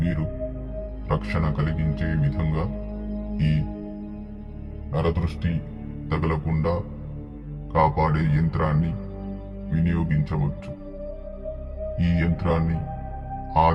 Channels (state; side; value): identical; both; correlation 1.00